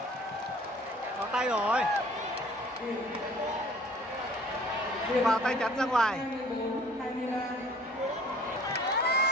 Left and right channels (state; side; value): normal; both; correlation 0.53